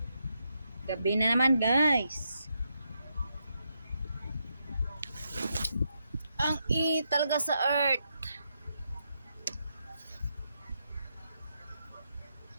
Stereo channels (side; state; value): both; inverted; correlation -0.82